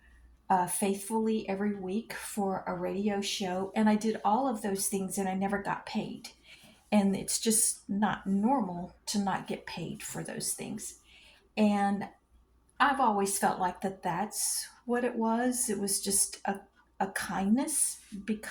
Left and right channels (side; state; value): both; identical; correlation 1.00